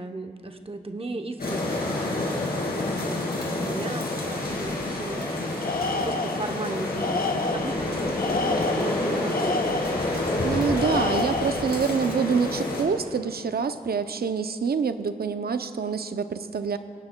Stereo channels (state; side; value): normal; both; correlation 0.47